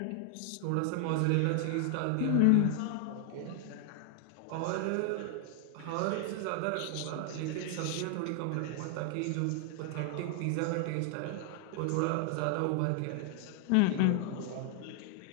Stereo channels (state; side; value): different; both; correlation 0.00